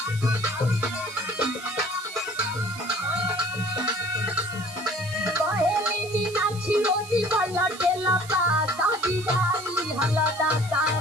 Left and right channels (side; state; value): right; noise; hiss, 16 dB below the sound